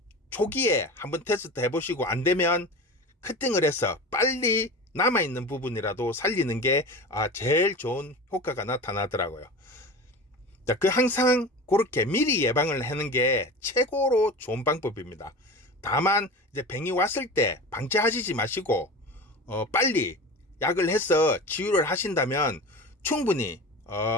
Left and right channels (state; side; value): normal; both; correlation 0.32